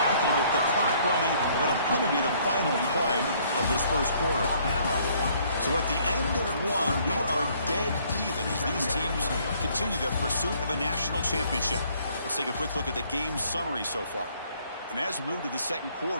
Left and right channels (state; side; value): inverted; both; correlation -0.63